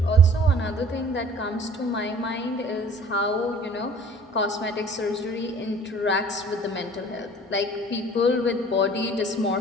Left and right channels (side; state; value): both; normal; correlation 0.50